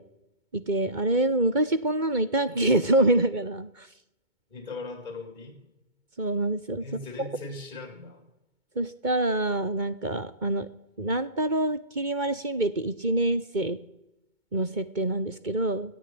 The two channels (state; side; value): late; left; 2.2 ms